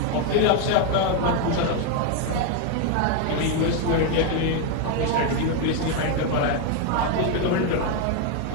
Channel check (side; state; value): both; different; correlation 0.01